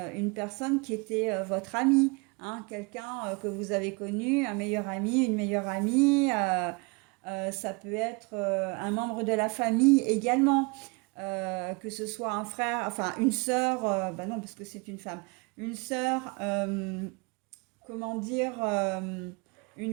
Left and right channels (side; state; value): left; quieter; 29.4 dB